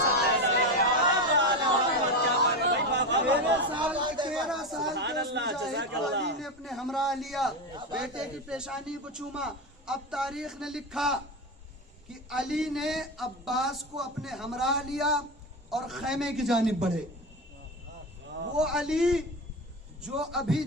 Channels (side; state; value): both; normal; correlation 0.18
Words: अली ने अपने हमरा लिया, बेटे की पेशानी को चूमा। अब तारीख ने लिखा कि अली ने अब्बास को अपने हमरा लिया और खैमे की जानिब बढ़े। वो अली जो अभी